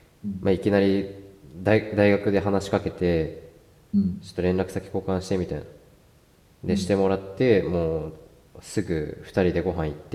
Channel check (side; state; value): both; identical; correlation 1.00